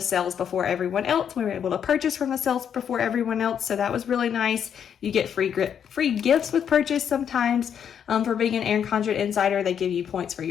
sales before everyone else. We were able to purchase from the sales before everyone else. So that was really nice. You get free gifts with purchase sometimes. For being an Erin Condren Insider, they give you points for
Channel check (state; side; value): quieter; right; 8.3 dB